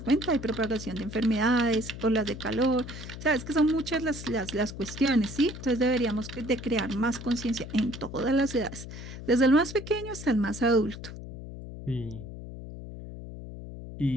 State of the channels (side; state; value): left; noise; hum, 11 dB below the sound